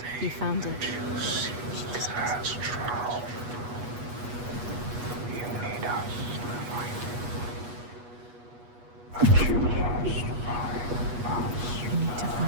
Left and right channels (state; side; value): late; left; 8.3 ms